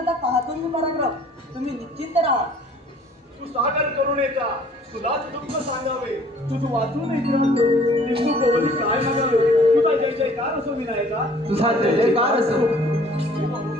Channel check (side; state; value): both; normal; correlation 0.54